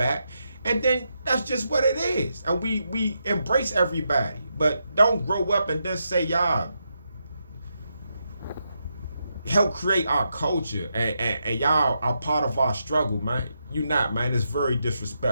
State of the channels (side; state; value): both; inverted; correlation -0.83